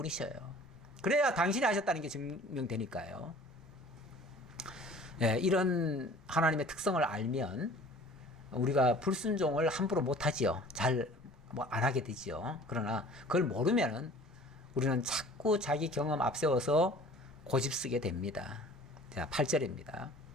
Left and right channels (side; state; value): both; normal; correlation 0.47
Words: 그래야 당신이 하셨다는 게 증명되니까요. 예, 이런 하나님의 특성을 알면 우리가 불순종을 함부로 못하지요. 잘 안 하게 되지요. 그러나 그걸 모르면은 우리는 자꾸 자기 경험 앞세워서 고집 쓰게 됩니다. 자, 8절입니다.